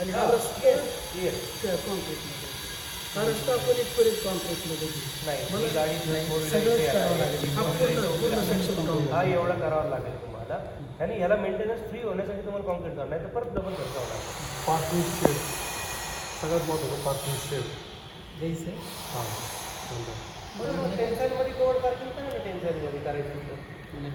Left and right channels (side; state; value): both; identical; correlation 1.00